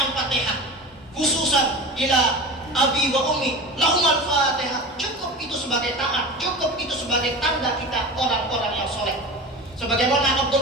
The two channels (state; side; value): normal; both; correlation 0.32